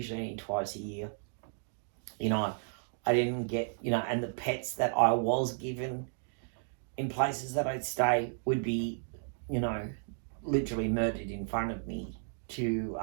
only twice a year. You know, I didn't get, you know, and the pets that I was given in places that I'd stay would be, you know, literally murdered in front of me to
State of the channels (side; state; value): left; silent; digital silence